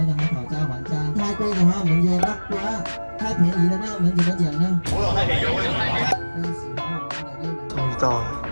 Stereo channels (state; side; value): inverted; both; correlation -1.00